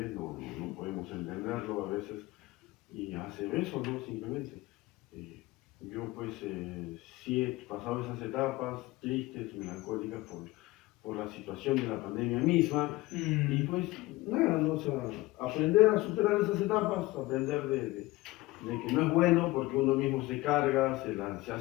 no podemos entenderlo a veces, y hacer eso, ¿no? Simplemente. Eh, yo pues sí he pasado esas etapas tristes, melancólicas por la situación de la pandemia misma, y pues nada, ¿no? O sea, aprender a superar esas etapas, aprender de que no es bueno porque uno mismo se carga, se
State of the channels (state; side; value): quieter; right; 19.6 dB